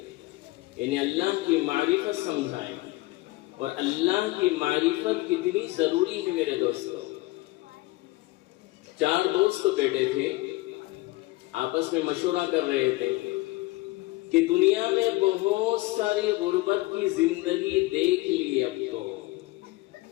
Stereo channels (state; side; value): quieter; right; 20.7 dB